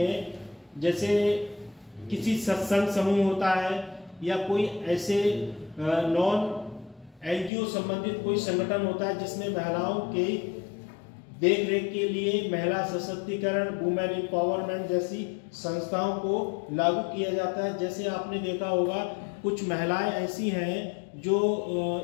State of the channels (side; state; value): right; drops out; at 7.5 s